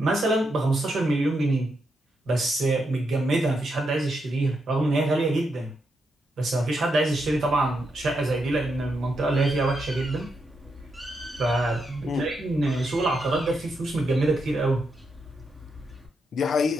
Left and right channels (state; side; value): normal; both; correlation 0.83